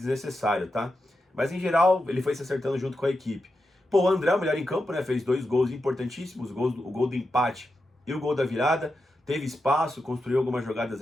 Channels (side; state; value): both; normal; correlation 0.88